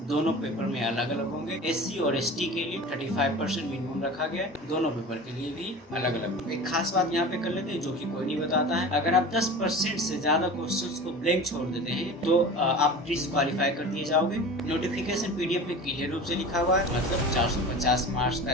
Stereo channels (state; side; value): normal; both; correlation 0.35